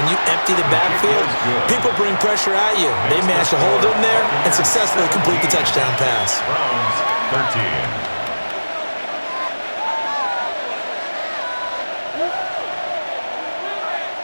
you empty the backfield, people bring pressure at you. They managed to hold in there and successfully complete the touchdown pass. Browns 13.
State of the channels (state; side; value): inverted; both; correlation -1.00